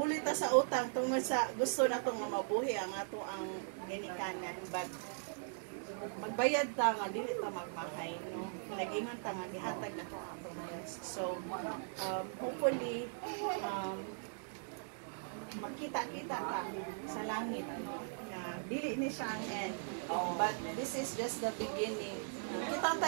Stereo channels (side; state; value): left; silent; digital silence